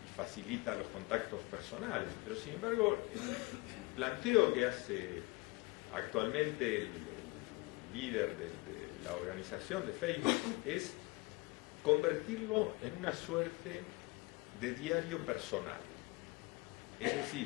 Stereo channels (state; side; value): quieter; right; 25.4 dB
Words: y facilita los contactos personales. Pero sin embargo, el planteo que hace actualmente el líder de la organización de Facebook es convertirlo en una suerte de diario personal. Es